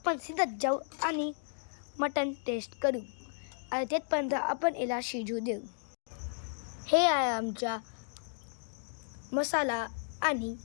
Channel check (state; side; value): silent; right; digital silence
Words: सिद्धत जाऊ आणि मटण टेस्ट करू. आणि तेथपर्यंत आपण याला शिजू देऊ. हे आहे आमचा मसाला आणि